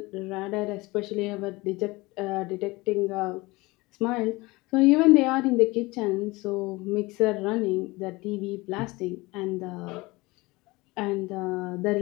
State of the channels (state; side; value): quieter; right; 22.4 dB